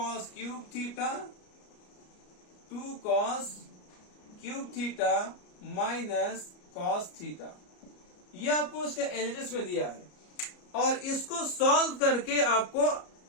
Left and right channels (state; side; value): late; right; 33 ms